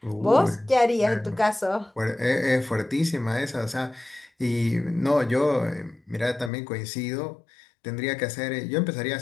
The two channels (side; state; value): right; drops out; at 6.5 s